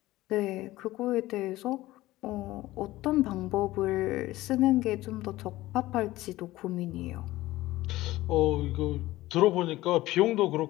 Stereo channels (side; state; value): right; quieter; 17.2 dB